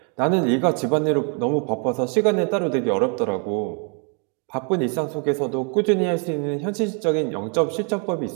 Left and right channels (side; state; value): left; quieter; 37.8 dB